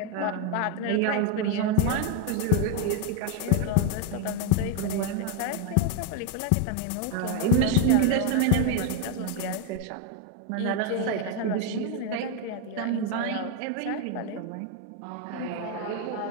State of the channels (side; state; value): both; different; correlation 0.01